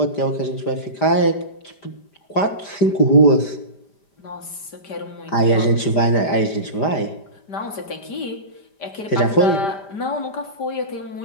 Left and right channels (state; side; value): late; right; 5.0 ms